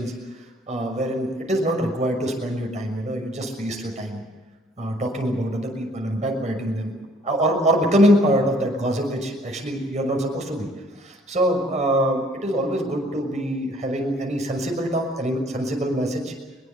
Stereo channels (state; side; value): normal; both; correlation 0.60